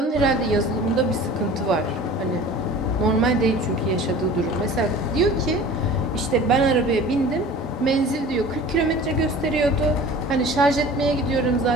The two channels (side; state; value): both; normal; correlation 0.42